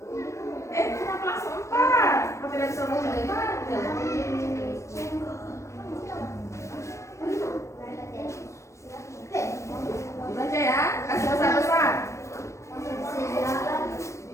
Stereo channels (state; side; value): late; right; 0.14 ms